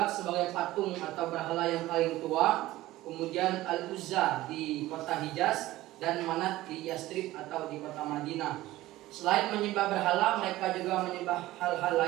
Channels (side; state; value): left; quieter; 16.7 dB